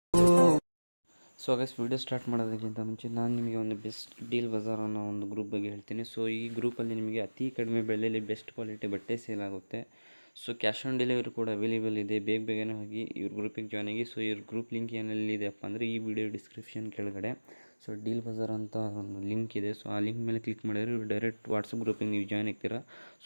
ಸೊ ಗೈಸ್ ವಿಡಿಯೋ ಸ್ಟಾರ್ಟ್ ಮಾಡೋದಕ್ಕಿಂತ ಮುಂಚೆ ನಾನು ನಿಮಗೆ ಒಂದು ಬೆಸ್ಟ್ ಡೀಲ್ ಬಜಾರ್ ಅನ್ನೋ ಒಂದು ಗ್ರೂಪ್ ಬಗ್ಗೆ ಹೇಳ್ತೀನಿ. ಸೊ ಈ ಗ್ರೂಪಲ್ಲಿ ನಿಮಗೆ ಅತಿ ಕಡಿಮೆ ಬೆಲೆಯಲ್ಲಿ ಬೆಸ್ಟ್ ಕ್ವಾಲಿಟಿ ಬಟ್ಟೆ ಸೇಲ್ ಆಗುತ್ತೆ. ಸೊ ಕ್ಯಾಶ್ ಆನ್ ಡೆಲಿವರಿ ಕೂಡ ಅವೈಲೇಬಲ್ ಇದೆ. ಬೇಗನೆ ಹೋಗಿ ಇವ್ರ ಗ್ರೂಪಿಗೆ ಜಾಯ್ನ್ ಆಗಿ. ಸೊ ಇವ್ರ ಗ್ರೂಪ್ ಲಿಂಕ್ ಏನಲ್ಲಿದೆಯಪ್ಪ ಅಂದರೆ ಈ ವಿಡಿಯೋ ಡಿಸ್ಕ್ರಿಪ್ಷನ್ ಕೆಳಗಡೆ ಸೊ ಡೀಲ್ ಬಜಾರ್ ಅಂತ ಒಂದು ಲಿಂಕ್ ಇದೆ. ಸೊ ಆ ಲಿಂಕ್ ಮೇಲೆ ಕ್ಲಿಕ್ ಮಾಡಿದ್ರೆ ಇವ್ರು ಡೈರೆಕ್ಟ್ ವಾಟ್ಸಪ್ ಗ್ರೂಪಿಗೆ ನೀವು ಜಾಯ್ನ್ ಆಗ್ತೀರಾ.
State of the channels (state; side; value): inverted; both; correlation -1.00